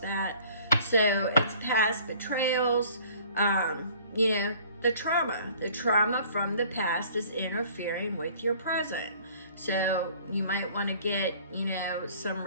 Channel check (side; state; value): both; inverted; correlation -0.52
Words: So it's past betrayals. The trauma from the past is interfering with your present. So you might want to get, some